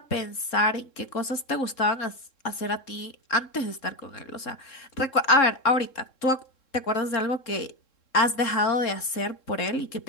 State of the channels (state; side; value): late; right; 3.7 ms